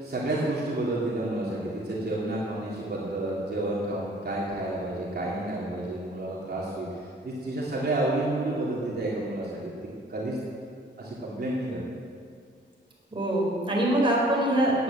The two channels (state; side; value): normal; both; correlation 0.54